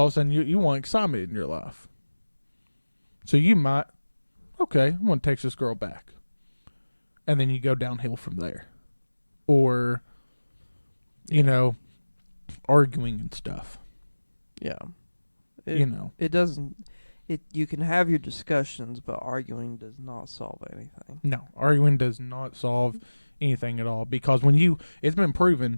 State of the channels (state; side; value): inverted; both; correlation -1.00